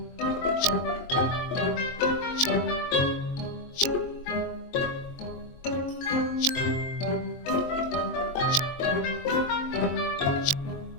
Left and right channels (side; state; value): right; late; 22 ms